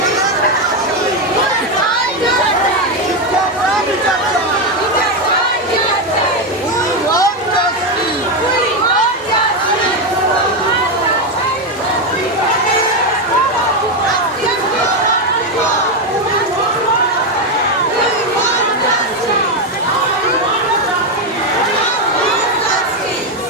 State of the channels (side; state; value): both; normal; correlation 0.08